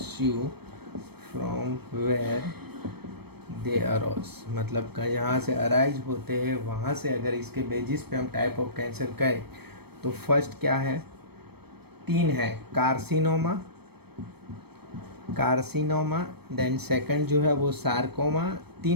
from where they arise, मतलब यहाँ से अराइज होते हैं वहाँ से अगर इसके बेसिस पे हम टाइप ऑफ कैंसर कहें तो फर्स्ट क्या है, 3 है, कार्सिनोमा, देन सेकंड जो है वो सार्कोमा,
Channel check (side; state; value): left; late; 0.97 ms